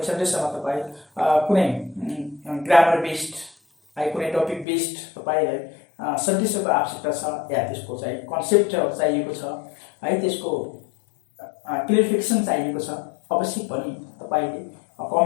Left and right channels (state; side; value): drops out; right; at 4.7 s